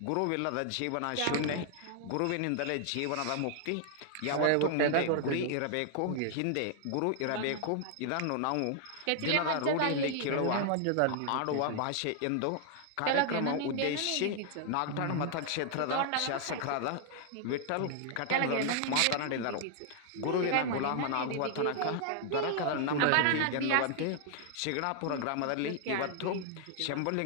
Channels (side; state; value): both; different; correlation 0.00